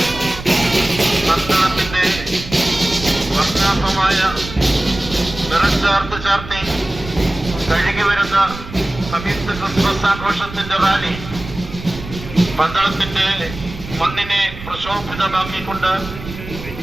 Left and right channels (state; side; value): noise; right; rumble, 12 dB below the sound